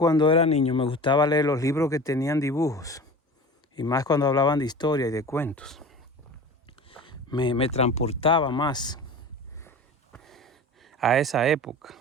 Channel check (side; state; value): both; normal; correlation 0.36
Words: era niño me gustaba leer los libros que tenían dibujos, y más cuando hablaban de historia y de cuentos. Me transportaba más a esa época.